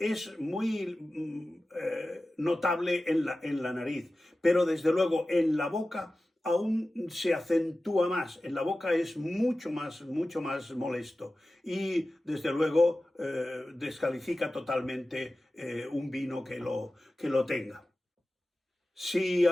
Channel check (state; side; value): normal; both; correlation 0.95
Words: muy notable en la nariz, pero desde luego en la boca aún se acentúa más. En la boca es mucho más molesto y desde luego descalifica totalmente un vino que lo tenga. Si